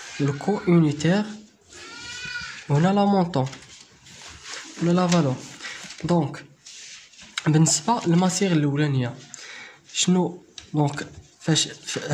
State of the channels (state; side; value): identical; both; correlation 1.00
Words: لو كو يونيتير، وهنا لا مونطون ولا لا فالور. دونك بالنسبه للماسيغ الاولانيه شنو؟ دونك فاش